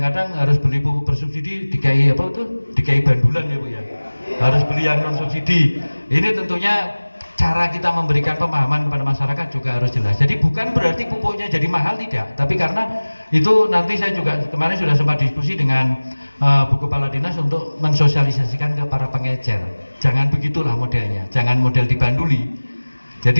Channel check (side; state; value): both; inverted; correlation -1.00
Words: harus beli pupuk bersubsidi dikai apa itu? Dikai bandulan ya Bu ya. Harus beli yang non subsidi. Ini tentunya cara kita memberikan pemahaman kepada masyarakat juga harus jelas. Jadi bukan berarti pupuknya jadi mahal, tidak, tapi karena itu nanti saya juga kemarin sudah sempat diskusi dengan Bu Kepala Dinas untuk mensosialisasikan ke para pengecer. Jangan begitulah modelnya, jangan model dibanduli.